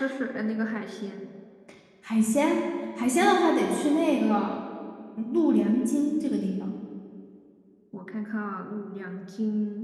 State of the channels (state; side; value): identical; both; correlation 1.00